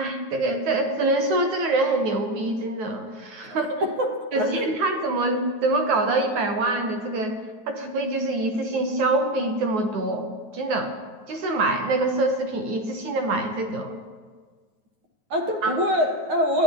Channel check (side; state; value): left; late; 9.3 ms